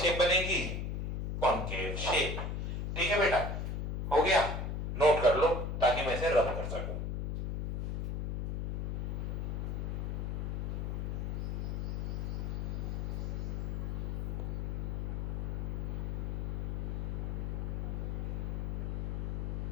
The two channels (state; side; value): noise; left; hum, 1 dB below the sound